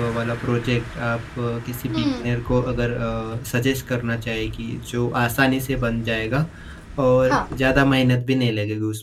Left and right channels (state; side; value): identical; both; correlation 1.00